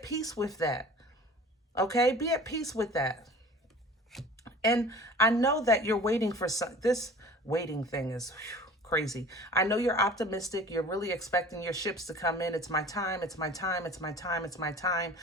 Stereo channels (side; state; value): both; normal; correlation 0.44